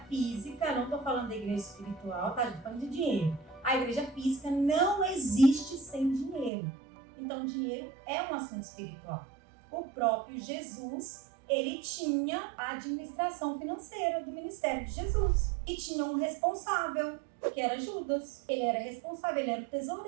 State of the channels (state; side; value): drops out; left; at 6.5 s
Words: física, não estou falando da igreja espiritual, tá? Estou falando de dinheiro. A igreja física não existe sem dinheiro. Então, dinheiro é um assunto espiritual. O próprio Jesus, ele tinha a administração financeira do ministério de Jesus. E tinha um responsável, que era Judas. Ele era responsável, ele era o